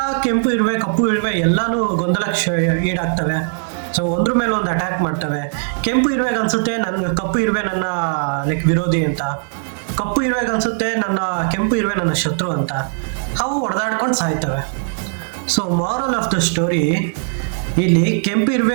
ಕೆಂಪು ಇರುವೆ ಕಪ್ಪು ಇರುವೆ ಎಲ್ಲಾನು ಗೊಂದಲಕ್ಕೆ ಈಡಾಗ್ತವೆ. ಸೊ ಒಂದ್ರ ಮೇಲೆ ಒಂದು ಅಟ್ಯಾಕ್ ಮಾಡ್ತವೆ. ಕೆಂಪು ಇರುವೆಗೆ ಅನ್ಸುತ್ತೆ ಕಪ್ಪು ಇರುವೆ ನನ್ನ ಲೈಕ್ ವಿರೋಧಿ ಅಂತ, ಕಪ್ಪು ಇರುವೆಗೆ ಅನ್ಸುತ್ತೆ ಕೆಂಪು ಇರುವೆ ನನ್ನ ಶತ್ರು ಅಂತ. ಅವು ಹೊಡೆದಾಡ್ಕೊಂಡು ಸಾಯ್ತವೆ. So moral of the story, ಇಲ್ಲಿ ಕೆಂಪು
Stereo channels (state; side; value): silent; left; digital silence